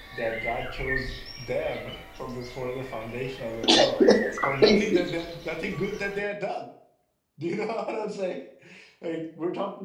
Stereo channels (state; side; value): identical; both; correlation 1.00